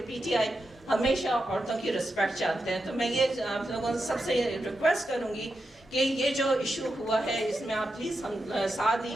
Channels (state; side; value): normal; both; correlation 0.87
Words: پی ٹی آئی ہمیشہ عورتوں کی رسپیکٹ چاہتے ہیں. تو میں یہ آپ لوگوں سے سب سے ریکویسٹ کروں گی کہ یہ جو ایشو ہوا ہے اس میں آپ پلیز ہم ساتھ